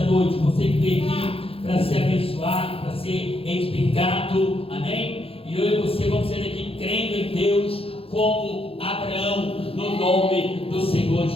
noite. Você que veio aqui para ser abençoado, para ser edificado. Amém? E eu e você vamos ser aqui crendo em Deus como Abraão, no nome do Senhor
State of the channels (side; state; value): right; late; 0.27 ms